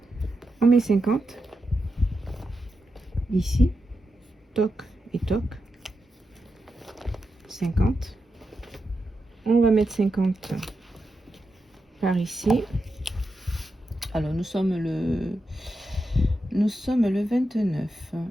On met 50 ici, toc et toc, 50. On va mettre 50 par ici. Alors nous sommes le 29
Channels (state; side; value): normal; both; correlation 0.87